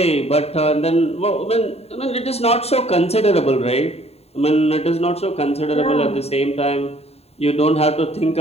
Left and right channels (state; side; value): late; right; 0.30 ms